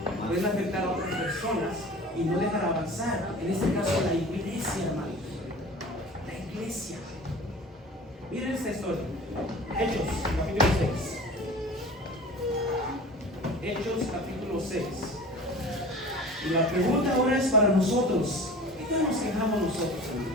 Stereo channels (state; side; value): normal; both; correlation 0.39